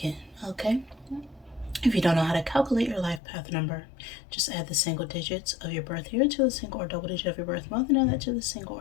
Okay. If you don't know how to calculate your life path number, just add the single digits of your birth year to the single or double digit of your birth month, and add that to the single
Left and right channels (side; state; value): right; drops out; at 3.2 s